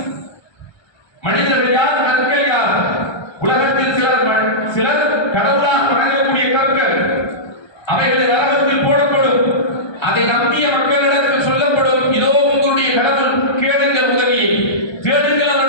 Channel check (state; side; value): late; right; 1.2 ms